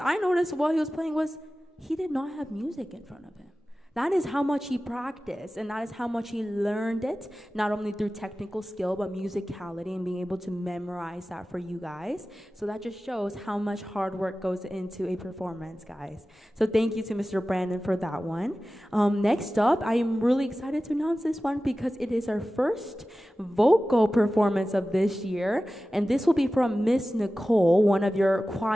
I noticed while he was playing was he did not have music in front of him. That is how much he practiced, and that is how much he learned it, not only through technical skill, but musicality and being able to memorize that for you guys. So that just shows how much hard work goes into a performance, guys. So thank you to Mr. Brandon for that one. Next up, I am really excited to announce this one because it is our first vocal performance of this year, and this will be from Miss Nicole, one of your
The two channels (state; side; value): normal; both; correlation 0.95